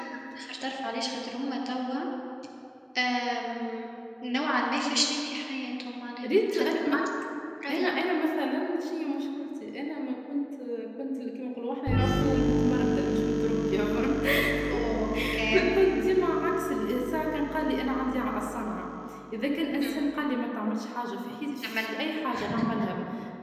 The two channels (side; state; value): both; identical; correlation 1.00